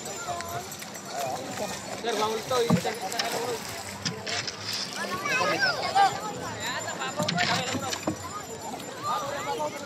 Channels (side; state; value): both; identical; correlation 1.00